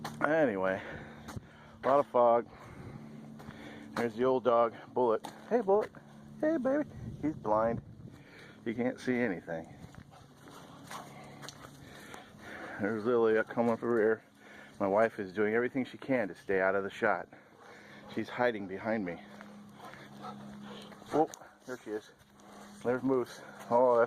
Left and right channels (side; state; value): both; identical; correlation 1.00